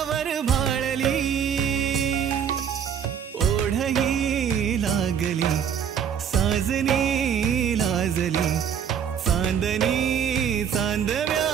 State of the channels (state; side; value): quieter; left; 8.1 dB